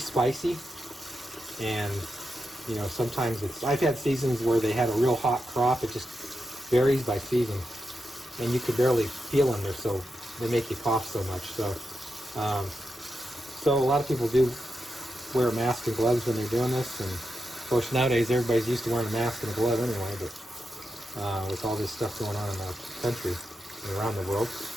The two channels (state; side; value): normal; both; correlation 0.87